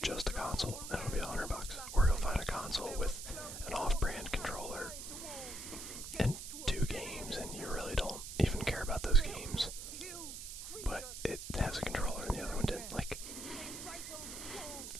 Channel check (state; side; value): noise; right; hiss, 9 dB below the sound